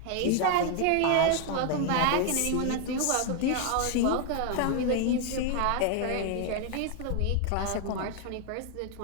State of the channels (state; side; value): different; both; correlation 0.01